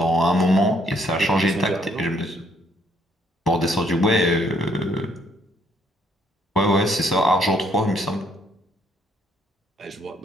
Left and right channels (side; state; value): both; normal; correlation 0.68